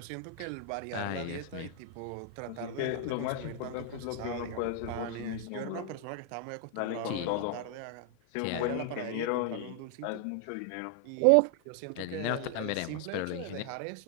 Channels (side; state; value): both; different; correlation 0.00